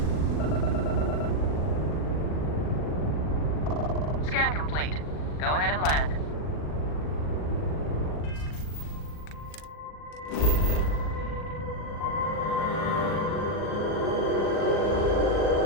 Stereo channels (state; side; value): late; right; 40 ms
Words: Scan complete. Go ahead and land.